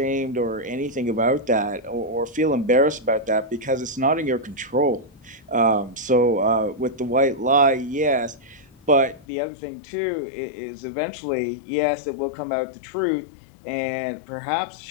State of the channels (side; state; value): right; drops out; at 9.2 s